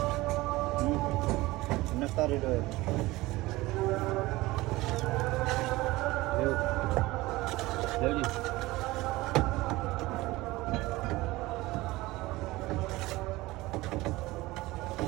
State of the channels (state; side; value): quieter; left; 19.6 dB